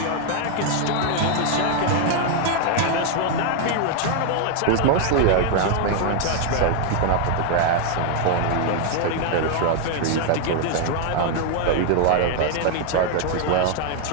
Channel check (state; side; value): different; both; correlation 0.00